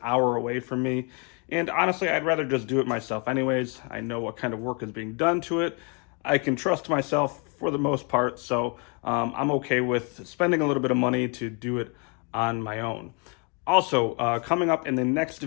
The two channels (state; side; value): quieter; right; 34.7 dB